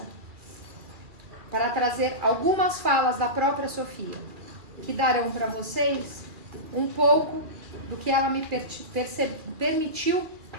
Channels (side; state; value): left; late; 2.4 ms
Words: para trazer algumas falas da própria Sofia, que darão para vocês um pouco do que ela me permitiu